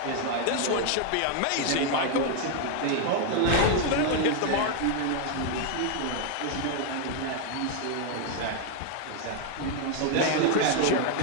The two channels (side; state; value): both; different; correlation 0.00